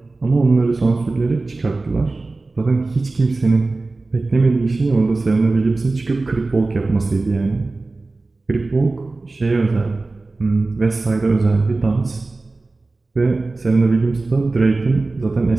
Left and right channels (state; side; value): quieter; left; 3.4 dB